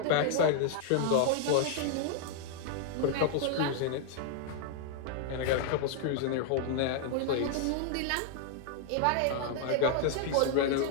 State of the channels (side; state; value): both; different; correlation 0.00